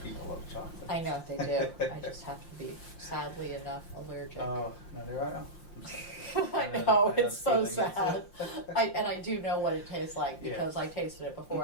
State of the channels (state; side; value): late; right; 5.7 ms